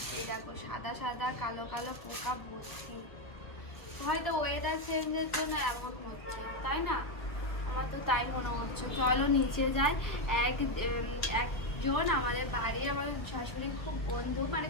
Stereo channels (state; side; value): late; right; 1.3 ms